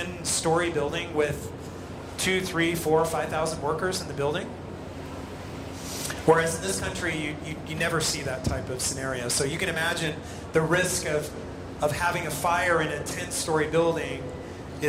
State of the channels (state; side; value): identical; both; correlation 1.00